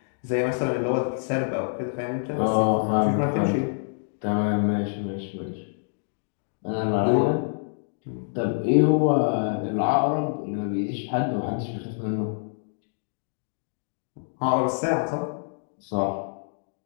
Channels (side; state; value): right; silent; digital silence